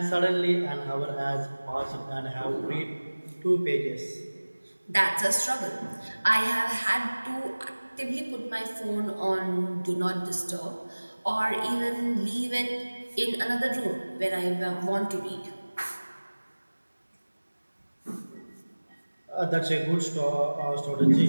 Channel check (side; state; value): both; inverted; correlation -1.00